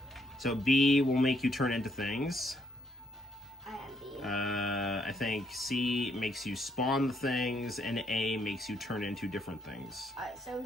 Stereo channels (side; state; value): both; normal; correlation 0.72